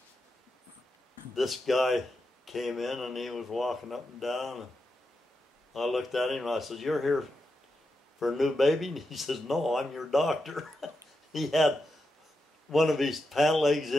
this guy came in and he was walking up and down. And I looked at him and I said, "You're here for a new baby?" And he says, "No, I'm your doctor." He had one of his pant legs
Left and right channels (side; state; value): both; normal; correlation 0.87